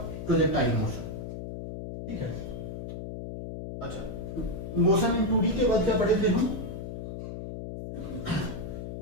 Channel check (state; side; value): noise; left; hum, 7 dB below the sound